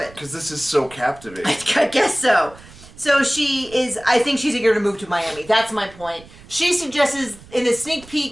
Because this is so captivating. I guess so. So I think she's eager to move to Miami. That's my point. She suggests, in the sneak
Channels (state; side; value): noise; right; rumble, 21 dB below the sound